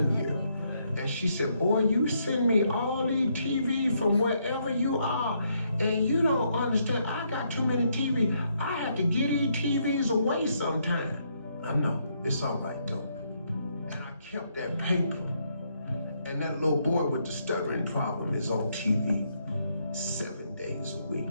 year and she said, boy, you send me all these TV from wherever you are, and you don't understand, I got too many TV. I have to get these TVs away sometime. I know, it's all right though. And I kept that paper, and that little boy with the stuttering problem is on TV 7 days a week.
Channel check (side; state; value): both; inverted; correlation -0.75